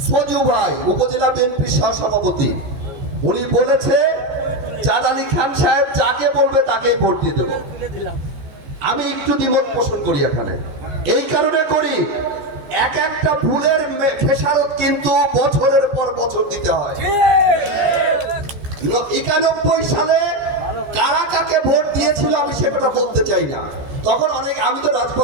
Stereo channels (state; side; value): late; left; 15 ms